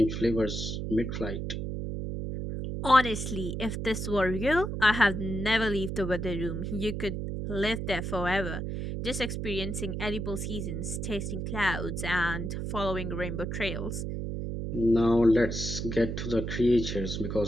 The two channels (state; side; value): noise; right; hum, 4 dB below the sound